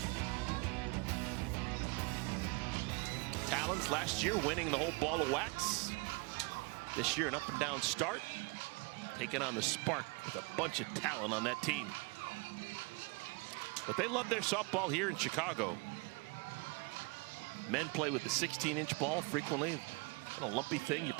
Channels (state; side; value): quieter; left; 28.9 dB